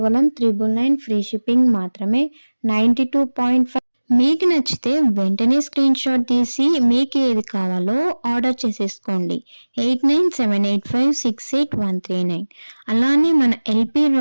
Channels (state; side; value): inverted; both; correlation -1.00